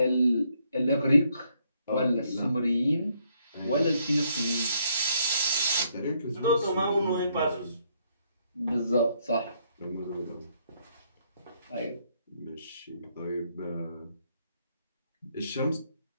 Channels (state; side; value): inverted; both; correlation -0.72